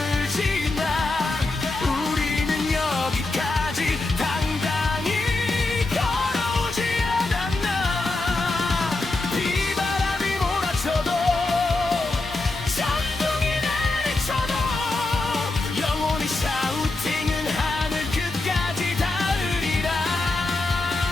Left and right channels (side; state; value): right; quieter; 3.1 dB